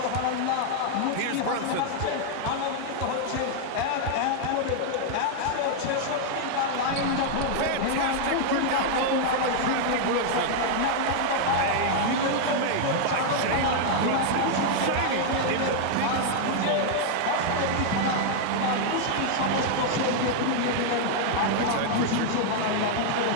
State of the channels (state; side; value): different; both; correlation -0.01